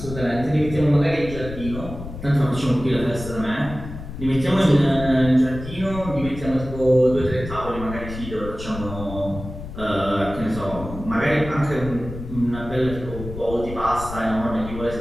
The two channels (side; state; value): left; noise; rumble, 10 dB below the sound